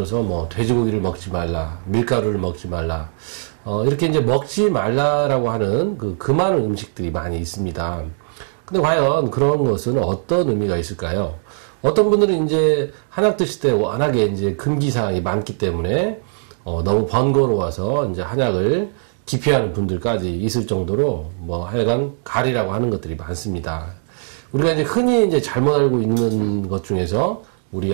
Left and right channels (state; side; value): silent; left; digital silence